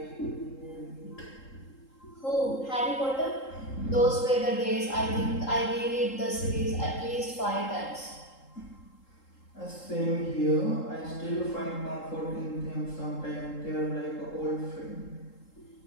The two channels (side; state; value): right; late; 3.8 ms